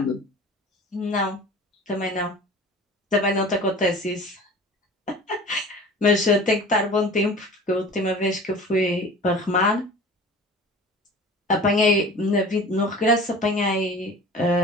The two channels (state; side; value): normal; both; correlation 0.40